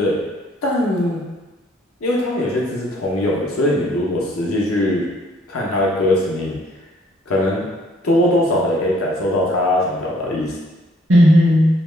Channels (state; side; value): normal; both; correlation 0.63